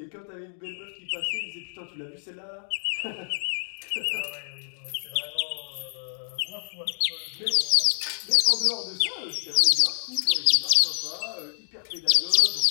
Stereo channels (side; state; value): right; silent; digital silence